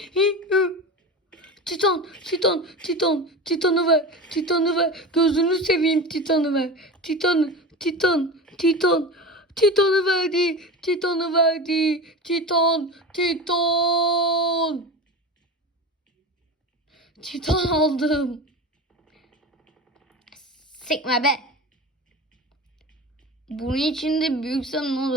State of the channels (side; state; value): both; normal; correlation 0.28